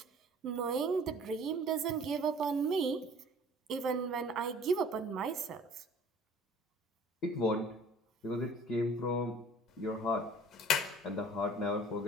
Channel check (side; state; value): both; normal; correlation 0.49